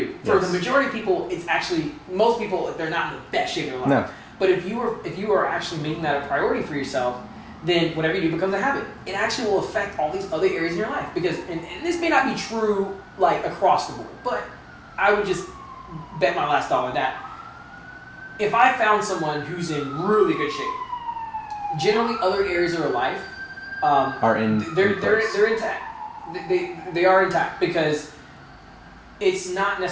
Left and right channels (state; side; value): identical; both; correlation 1.00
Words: For the majority of people, it's actually, most people, they're not in the best shape of their life. No. But if you are actually making that a priority for yourself, then whatever you do becomes a habit. It actually will affect all these other areas in your life. Because, and this may not be true like across the board, but I would just bet my last dollar that if I found someone who's in really good shape, generally other areas of their life they're intact. They are intact because it's not